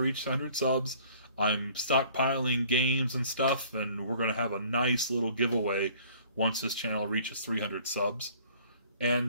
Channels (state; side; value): inverted; both; correlation -0.54